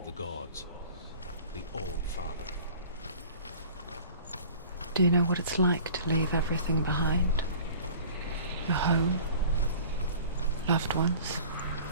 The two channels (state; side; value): inverted; both; correlation -0.45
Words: the gods, the All-Father. Do you know what it's like to leave everything behind? Your home, loved ones,